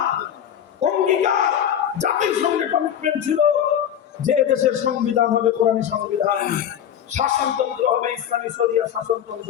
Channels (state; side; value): quieter; right; 9.6 dB